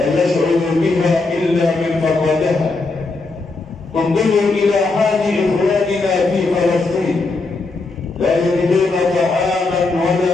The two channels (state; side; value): quieter; right; 3.6 dB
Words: يشعر بها إلا من فقدها. انظروا إلى حال إخواننا في فلسطين، لا يجدون طعاما